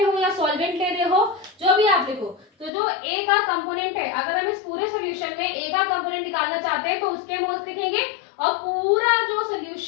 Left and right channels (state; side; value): drops out; right; at 2.7 s